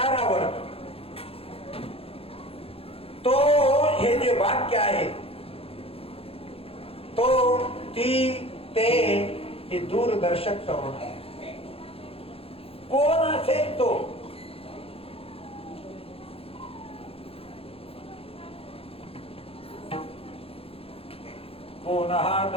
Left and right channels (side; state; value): right; late; 0.27 ms